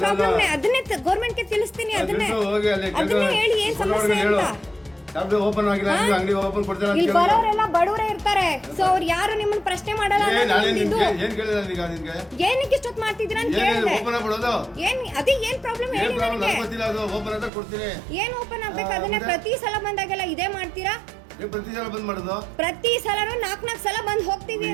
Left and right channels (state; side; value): drops out; left; at 17.5 s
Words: ಪ್ರಾಬ್ಲಮ್ ಅದನ್ನೇ ಗೌರ್ಮೆಂಟ್ ಗೆ ತಿಳಿಸ್ತೀನಿ. ಅದನ್ನೇ ಹೇಳಿ ಏನ್ ಸಮಸ್ಯೆ ಅಂತ. ಇಲ್ಲಿ ಬರೋರೆಲ್ಲ ಬಡವರೇ ಇರ್ತಾರೆ. ಸೊ ಅವ್ರು ಯಾರು ನಿಮ್ಮನ್ನ ಪ್ರಶ್ನೆ ಮಾಡಲ್ಲ. ಏನಕ್ಕೆ ಇಷ್ಟೊತ್ತು ಮಾಡ್ತಿದ್ದೀರಾ ಅಂತ ಕೇಳಿದೆ. ಅದೇ ಏನ್ ಪ್ರಾಬ್ಲಮ್ ಹೇಳಿ ನನಗೆ. ಏನ್ ಓಪನ್ ಆಗ್ಬೇಕು? ಅದನ್ನೇ ಪ್ರತಿ ಸಲ ಬಂದಾಗೆಲ್ಲ ಇದೇ ಮಾಡ್ತೀರಾ? ಪ್ರತಿ ಸಲನು 4 ಸಲ ಬಂದ್ ಹೋಗ್ತೀವಿ